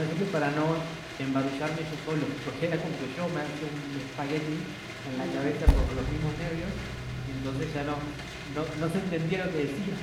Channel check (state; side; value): identical; both; correlation 1.00